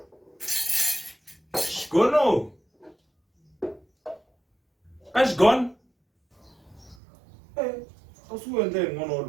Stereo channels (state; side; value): drops out; left; at 7.0 s